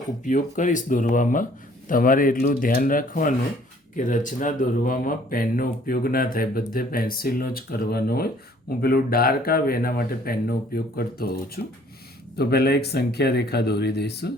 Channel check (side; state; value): both; normal; correlation 0.58